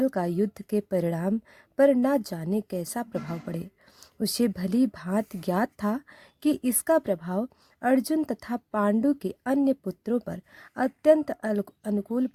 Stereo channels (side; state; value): both; identical; correlation 1.00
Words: का युद्ध के परिणाम पर न जाने कैसा प्रभाव पड़े। उसे भली भांति ज्ञात था कि इसका प्रभाव अर्जुन तथा पांडु के अन्य पुत्रों पर अत्यंत अनुकूल